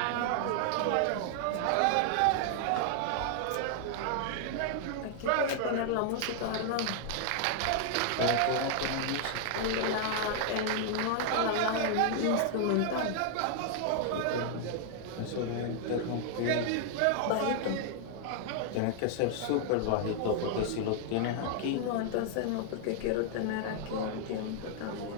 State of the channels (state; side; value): different; both; correlation 0.00